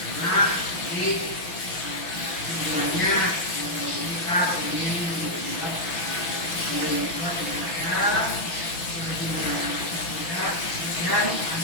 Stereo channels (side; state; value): right; late; 6.0 ms